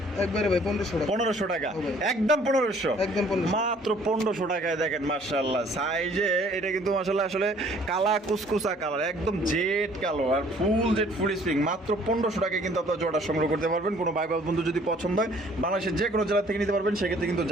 একবারে ভাই 1500 টাকা। 1500 টাকা, হবে। একদম 1500, একদম 1500। মাত্র 1500 টাকায়। দেখেন মাশাআল্লাহ, সাইজে এটা কিন্তু মাশাআল্লাহ আসলে কালা কুসকুসা কালার, একদম জেড কালো, আর ফুল জেড ফুল স্প্রিং। মাত্র 1500 টাকায় কিন্তু আপনার জোড়া সংগ্রহ করতে পারবেন। কোনো ভাই বন্ধু যদি পছন্দ হয়, বাংলাদেশের যে কোনো জেলা থেকে নিতে পারবেন। সেক্ষেত্রে কিন্তু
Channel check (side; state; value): both; normal; correlation 0.57